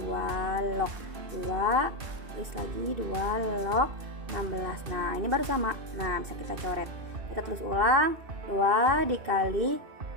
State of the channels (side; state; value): left; late; 2.5 ms